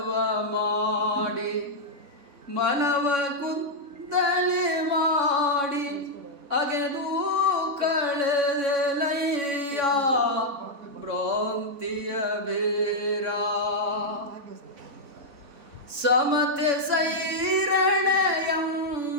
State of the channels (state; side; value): late; left; 3.6 ms